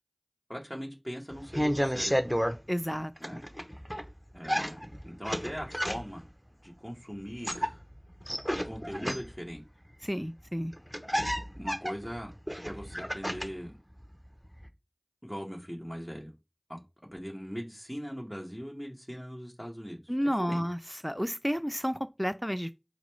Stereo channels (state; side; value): identical; both; correlation 1.00